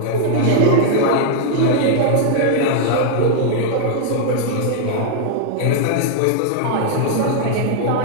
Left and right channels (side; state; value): both; different; correlation -0.01